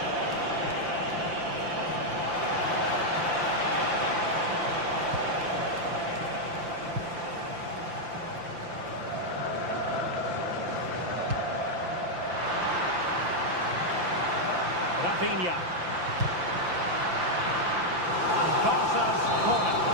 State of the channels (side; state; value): left; late; 5.8 ms